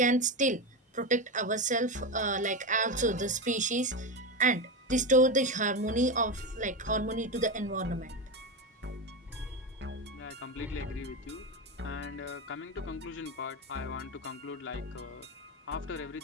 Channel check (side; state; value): both; normal; correlation 0.16